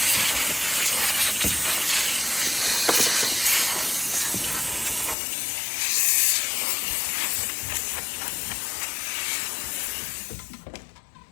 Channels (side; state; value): right; drops out; at 5.2 s